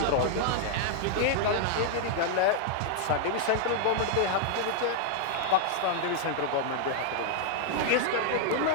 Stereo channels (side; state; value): both; different; correlation -0.01